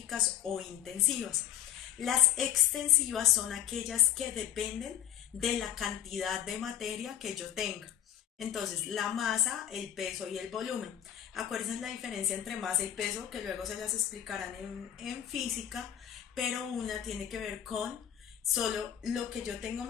o intensivas. Las extensivas son aquellas que dependen de la cantidad de materia que yo tenga. Entonces, la masa, el peso y el volumen. Acuérdense la diferencia entre masa y peso, que luego se las explicarán en física, pero una tiene que ver con solo lo que yo tengo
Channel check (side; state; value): right; quieter; 10.8 dB